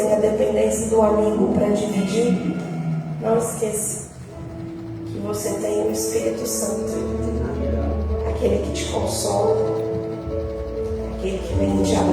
a dependência do amigo para dividir, não esqueça que você tem o Espírito Santo, aquele que te consola, aquele que vem e te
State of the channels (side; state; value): both; identical; correlation 1.00